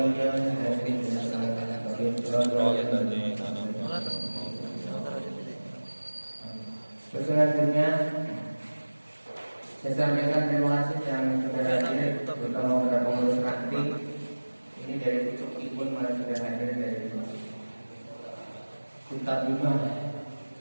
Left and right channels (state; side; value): inverted; both; correlation -1.00